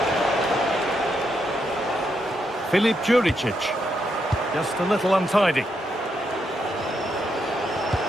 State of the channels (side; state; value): both; normal; correlation 0.80